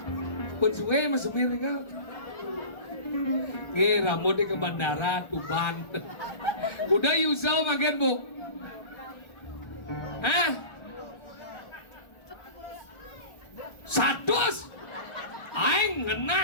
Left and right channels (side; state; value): right; late; 1.3 ms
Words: Pun suwe mau semir enggak? Nih rambutnya ke bandara Tuban. Udah Yusel makan bu? Hah? 100? Aing